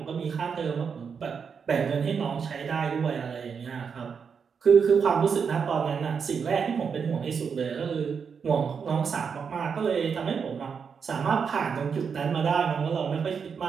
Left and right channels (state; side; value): quieter; left; 6.3 dB